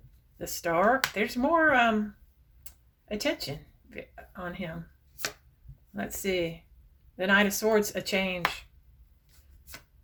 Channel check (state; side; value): identical; both; correlation 1.00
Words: The Star? There's more attention on him. Let's see. The Knight of Swords, a change.